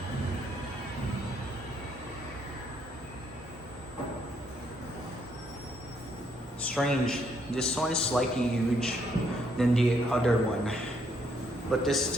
Strange. This one is slightly huge than the other one. But this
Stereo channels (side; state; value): both; normal; correlation 0.72